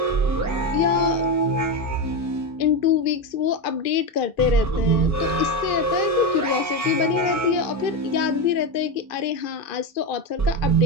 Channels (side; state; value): both; normal; correlation 0.14